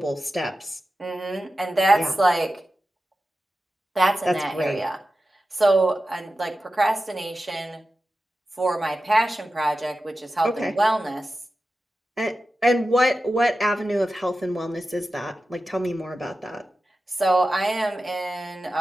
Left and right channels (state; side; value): normal; both; correlation 0.93